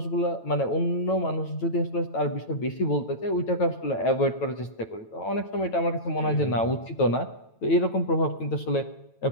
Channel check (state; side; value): late; right; 9.1 ms